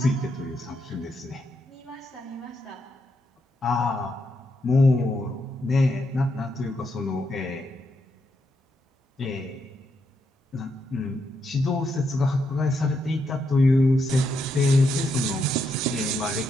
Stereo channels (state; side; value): normal; both; correlation 0.80